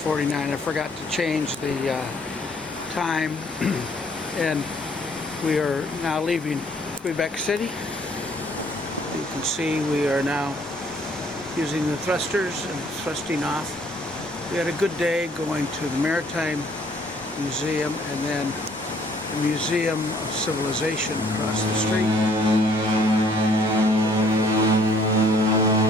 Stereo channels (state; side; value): normal; both; correlation 0.62